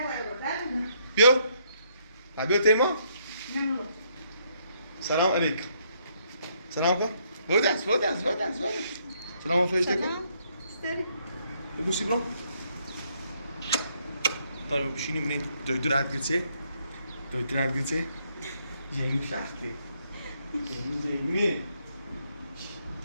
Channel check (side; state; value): both; inverted; correlation -0.71